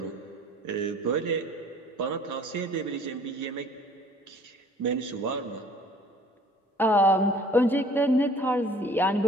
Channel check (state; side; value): normal; both; correlation 0.52